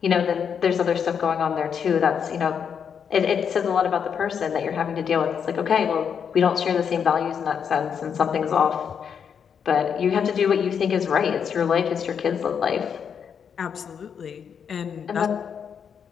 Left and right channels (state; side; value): quieter; right; 7.3 dB